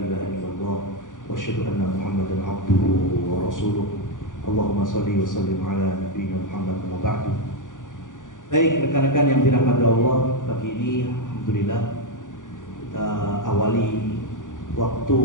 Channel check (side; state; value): right; late; 0.88 ms